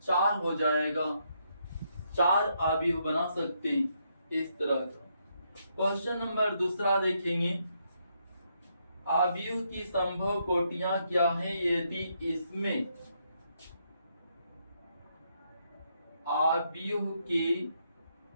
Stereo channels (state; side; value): inverted; both; correlation -0.77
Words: 4 हो जाएगा। 4 अवयव बना सकते हैं इस तरह का। क्वेश्चन नंबर दूसरा देखेंगे, अवयव की संभव कोटियां क्या है यदि इसमें अवयव की